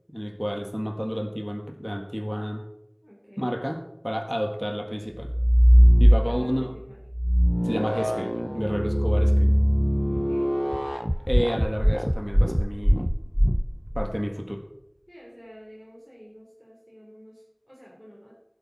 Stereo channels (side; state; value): both; identical; correlation 1.00